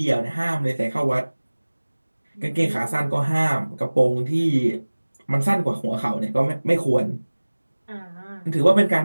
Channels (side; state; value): both; inverted; correlation -1.00